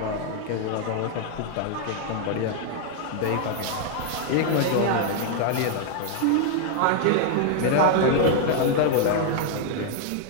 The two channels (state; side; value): different; both; correlation 0.00